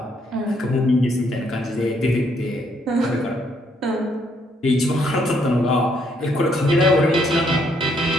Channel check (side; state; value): both; normal; correlation 0.71